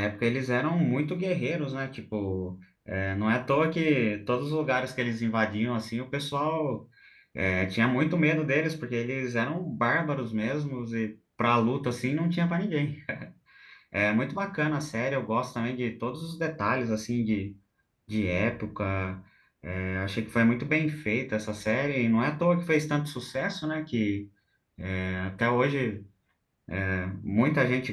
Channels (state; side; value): identical; both; correlation 1.00